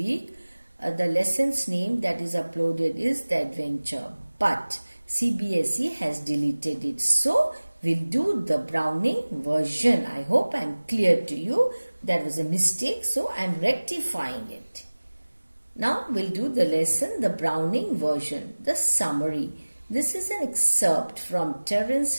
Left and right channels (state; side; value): inverted; both; correlation -1.00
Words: the lesson's name that is uploaded is The Adventure. But CBSE has deleted it. So, we'll do the Browning version. I hope I'm clear to you. That was a mistake, so I'm rectifying it. Now, we'll do the lesson, the Browning version, the summary. This is an excerpt from